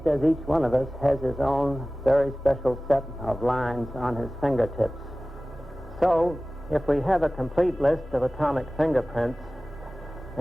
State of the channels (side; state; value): both; normal; correlation 0.97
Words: as each one of us has his own very special set of lines on his fingertips. So, if we have a complete list of atomic fingerprints,